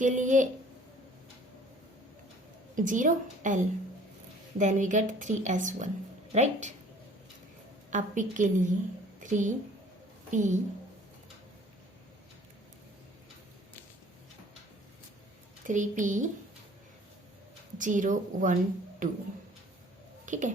लिए 0 L, then we get 3s1, right. अब P के लिए 3P 0 1 2, ठीक है।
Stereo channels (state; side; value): normal; both; correlation 0.53